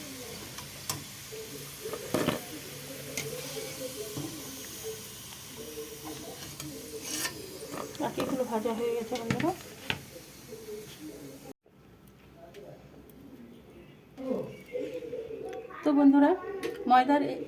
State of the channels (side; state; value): both; identical; correlation 1.00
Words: বাকিগুলো ভাজা হয়ে গেছে বন্ধুরা। তো বন্ধুরা